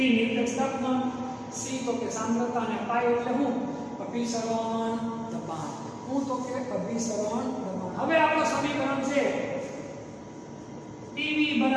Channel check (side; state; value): both; identical; correlation 1.00